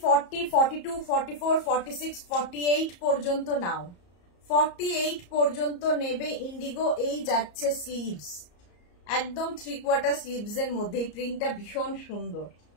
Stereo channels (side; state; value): right; late; 34 ms